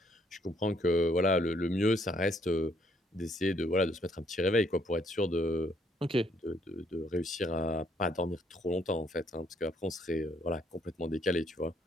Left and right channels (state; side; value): normal; both; correlation 0.68